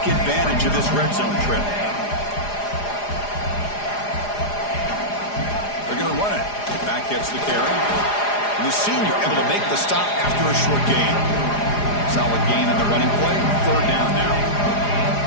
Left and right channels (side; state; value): right; late; 4.9 ms